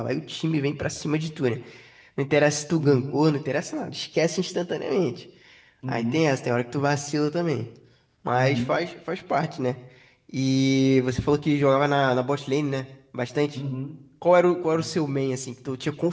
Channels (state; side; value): identical; both; correlation 1.00